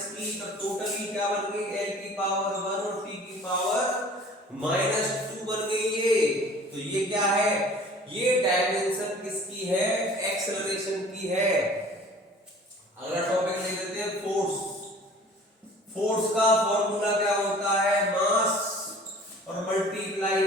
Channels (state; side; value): normal; both; correlation 0.47